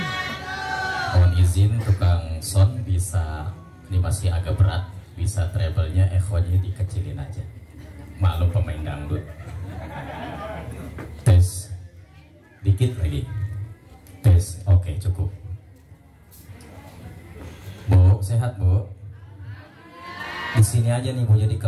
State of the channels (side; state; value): both; identical; correlation 1.00